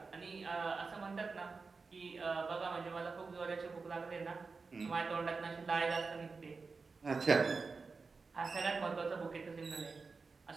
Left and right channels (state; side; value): quieter; left; 4.4 dB